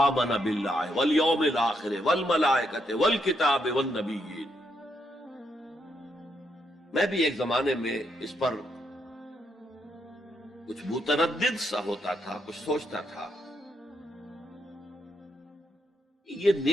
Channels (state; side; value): normal; both; correlation 0.78